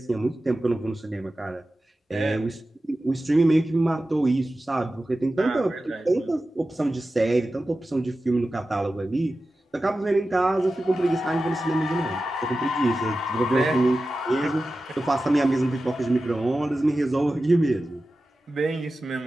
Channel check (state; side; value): normal; both; correlation 0.94